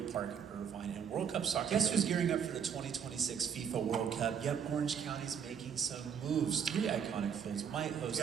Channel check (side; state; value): left; quieter; 7.5 dB